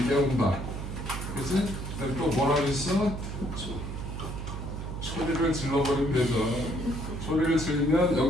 깨운다. 그치? 또 뭐라고 했어? 소리를 질러버리면 되죠. 소리를 지르면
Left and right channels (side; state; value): right; noise; hum, 6 dB below the sound